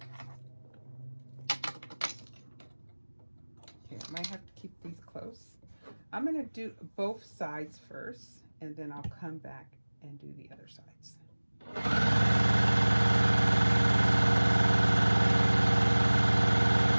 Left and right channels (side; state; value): both; inverted; correlation -1.00